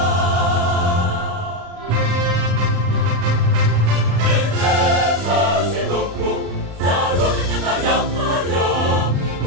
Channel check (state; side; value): late; left; 35 ms